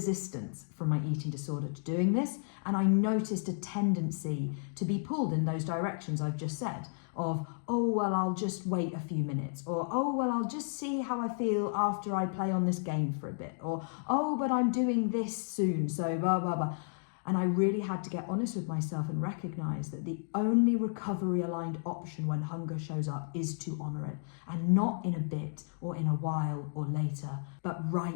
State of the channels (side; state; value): right; silent; digital silence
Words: from my eating disorder to doing this. And I noticed a tendency to be pulled in those directions I've just said of, oh, well, I'll just wait a few minutes, or, oh, well, I'll just see how I feel after I play on this game for a bit, or, oh, but I'm doing this soon, so blah, blah, blah. And I really had to get honest with myself and recognize that the only recovery aligned option when hunger shows up is to honor it, and not in a bit or in a while or later, but